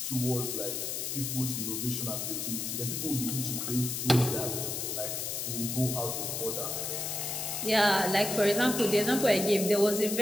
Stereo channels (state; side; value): noise; left; hiss, 3 dB below the sound